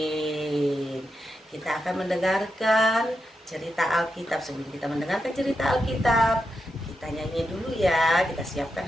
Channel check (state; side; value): normal; both; correlation 0.86